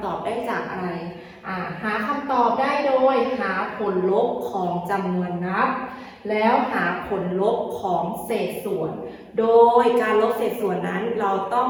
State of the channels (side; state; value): both; identical; correlation 1.00